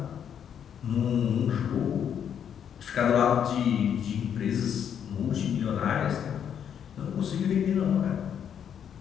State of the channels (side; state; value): right; quieter; 8.6 dB